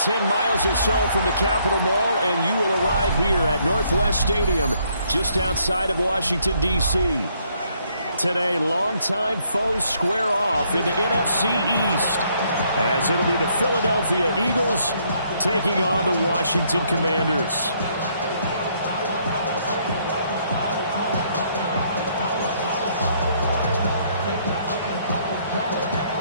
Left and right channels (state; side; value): inverted; both; correlation -0.69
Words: miles or so from the Capitol Mall, and you will arrive here at Northwest Stadium, just outside of Washington, D.C. Today, longtime foes square off in the NFC East, as it'll be the Philadelphia Eagles taking on the Washington Commanders.